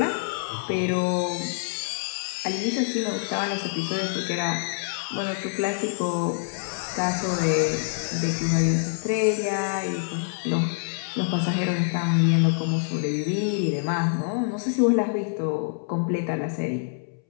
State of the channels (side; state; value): right; silent; 61 dB below the other